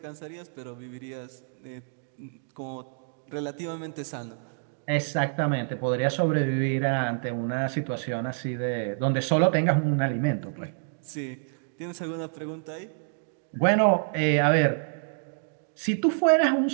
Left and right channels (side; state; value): left; silent; digital silence